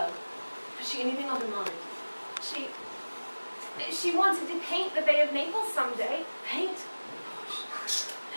Has she anything on her mind? She wanted to paint the Bay of Naples someday. Paint?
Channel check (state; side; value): inverted; both; correlation -1.00